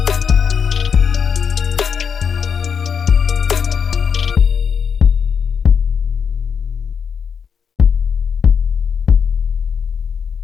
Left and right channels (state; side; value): quieter; right; 6.7 dB